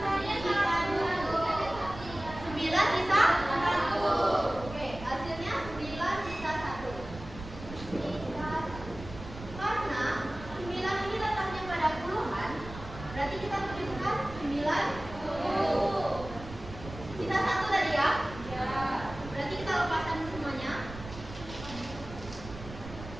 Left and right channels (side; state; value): right; noise; rumble, 13 dB below the sound